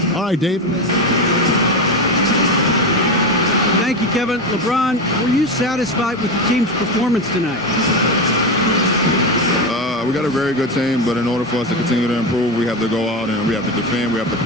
All right, Dave. Thank you, Kevin. LeBron, were you satisfied with the team's performance tonight? We got a very good team, but in order for us to continue to improve, we have to go out and we have to defend, we have to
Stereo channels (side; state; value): both; normal; correlation 0.17